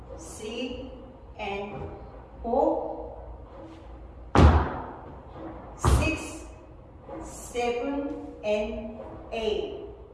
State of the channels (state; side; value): identical; both; correlation 1.00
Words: 3 and 4, 6, 7, and 8.